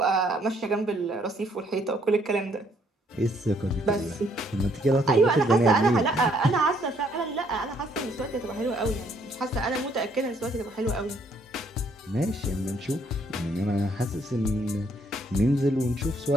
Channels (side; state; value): both; normal; correlation 0.67